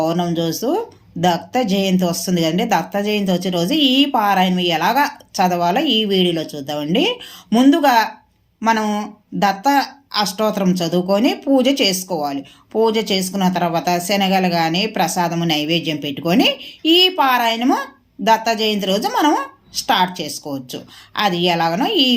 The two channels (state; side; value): identical; both; correlation 1.00